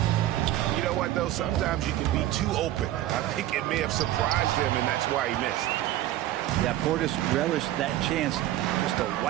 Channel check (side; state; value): left; quieter; 14.1 dB